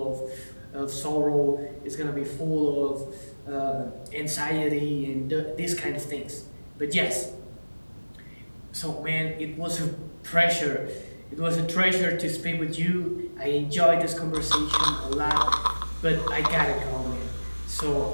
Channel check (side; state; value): both; inverted; correlation -1.00